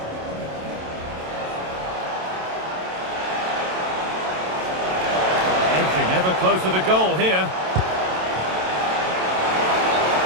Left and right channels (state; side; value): late; left; 27 ms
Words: Edging ever closer to goal here.